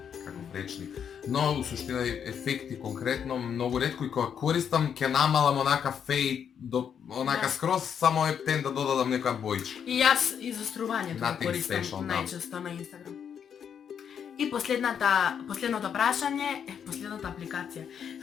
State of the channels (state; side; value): quieter; right; 7.9 dB